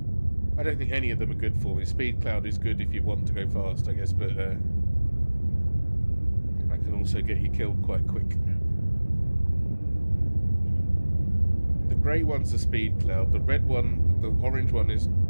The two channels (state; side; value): inverted; both; correlation -1.00